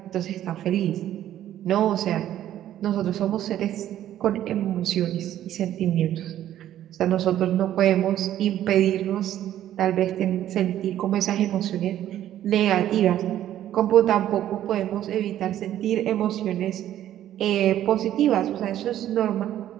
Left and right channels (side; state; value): left; quieter; 12.0 dB